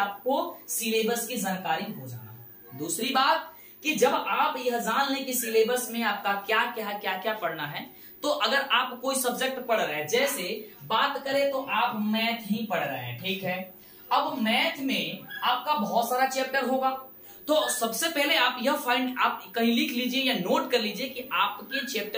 सिलेबस की जानकारी हो जाना। दूसरी बात कि जब आप यह जान लें कि सिलेबस में आपका क्या क्या पढ़ना है, तो अगर आप कोई सब्जेक्ट पढ़ रहे हैं, जैसे बात करें तो आप मैथ ही पढ़ रहे हैं, ठीक है। अब मैथ में आपका बहुत सारा चैप्टर होगा, तो सबसे पहले आप यह आप कहीं लिख लीजिए या नोट कर लीजिए कि आपके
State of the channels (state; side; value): identical; both; correlation 1.00